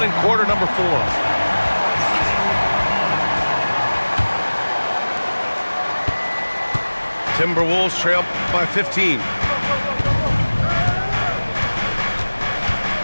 in quarter number 4. Timberwolves trail by 15.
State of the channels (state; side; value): inverted; both; correlation -1.00